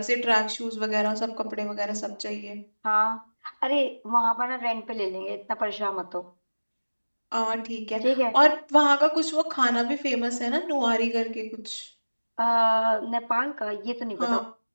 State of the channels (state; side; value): inverted; both; correlation -1.00